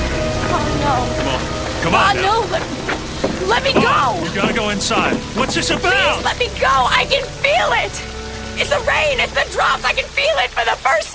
Oh, no. Come on. Come on now. No. Let me go. You gotta go inside. What's this about? Please let me go. I can feel it. It's the rain. It's the drops. I can feel it for the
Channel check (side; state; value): both; identical; correlation 1.00